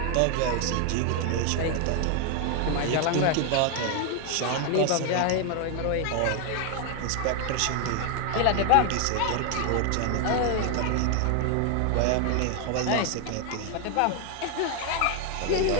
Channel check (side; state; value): both; different; correlation 0.01